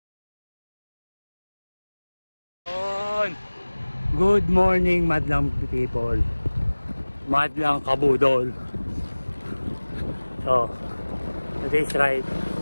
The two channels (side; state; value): both; inverted; correlation -1.00